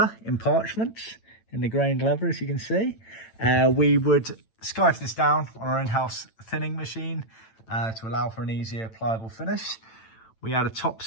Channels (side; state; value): right; late; 8.9 ms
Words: in parchment, in the grained leather, as you can see. We would scarf this down on our in-house thinning machine to allow for an easier pliable finish. We add a top